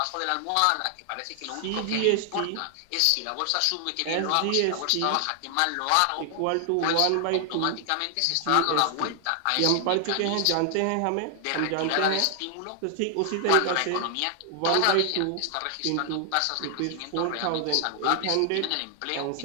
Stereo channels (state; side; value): different; both; correlation 0.00